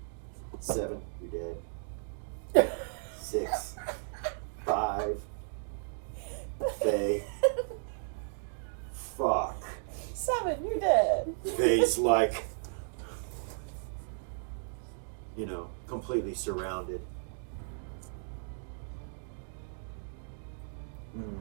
7, you're dead. 6, 5. Faye. Fuck. 7, you're dead. Faye's like, completely surrounded.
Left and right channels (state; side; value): silent; left; digital silence